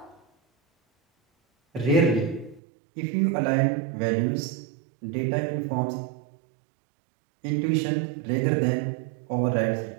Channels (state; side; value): drops out; left; at 2.6 s